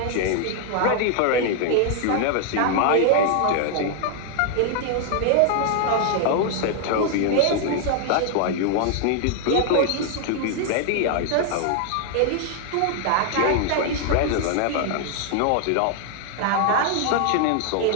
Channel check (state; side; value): different; both; correlation 0.00